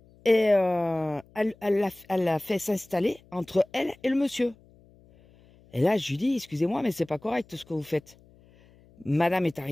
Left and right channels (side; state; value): left; noise; hum, 28 dB below the sound